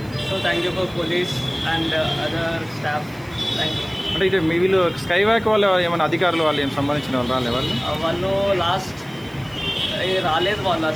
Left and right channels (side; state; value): right; noise; hiss, 26 dB below the sound